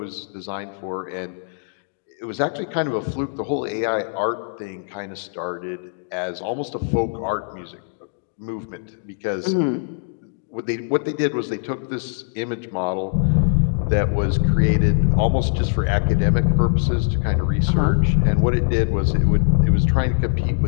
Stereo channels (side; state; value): right; silent; digital silence